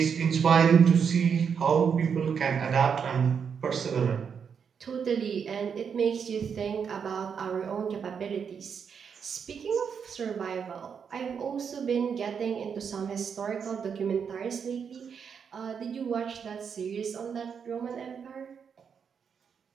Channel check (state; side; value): quieter; left; 6.8 dB